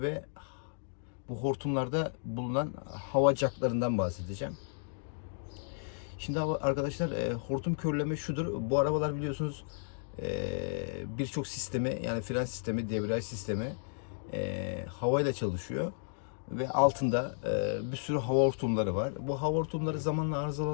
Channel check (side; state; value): right; silent; digital silence